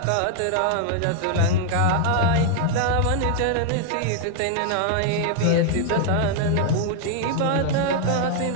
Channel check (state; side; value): different; both; correlation 0.00